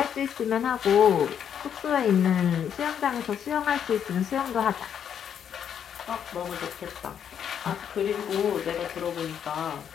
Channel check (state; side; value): quieter; right; 8.6 dB